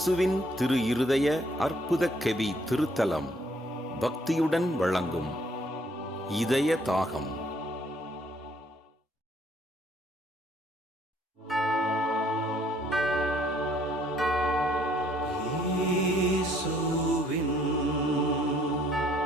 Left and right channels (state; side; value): normal; both; correlation 0.64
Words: திரு இருதய அற்புத கெவி திருத்தலம் பக்தியுடன் வழங்கும் இதய தாகம்.